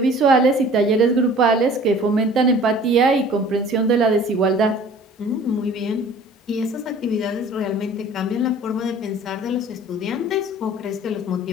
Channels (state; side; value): normal; both; correlation 0.48